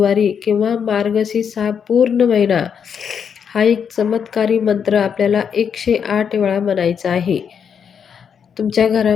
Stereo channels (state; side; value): quieter; right; 7.2 dB